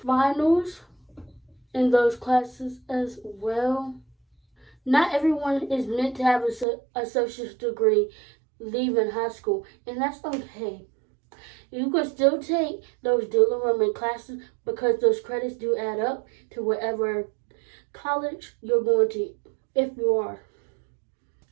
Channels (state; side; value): drops out; left; at 6.7 s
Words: in those classes as well. Not everyone is meant to have an associate's degree leaving high school, and that's okay. You can still take those dual enrollment classes because those credits do add up to whatever college you're going to, if you are.